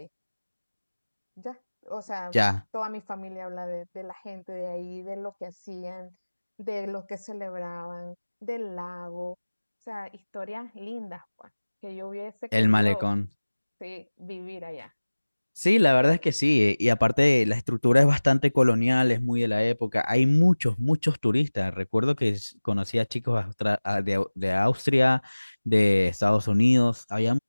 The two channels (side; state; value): both; inverted; correlation -1.00